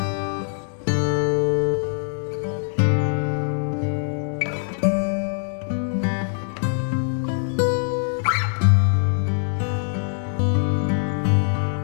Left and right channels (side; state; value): right; silent; digital silence